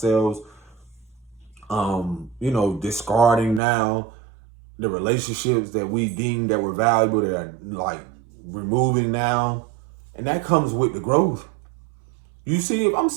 discarding now the relationships that we deem that were valuable, that are like removing now. And that comes with the growth. You see, if I'm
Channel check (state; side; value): drops out; left; at 3.6 s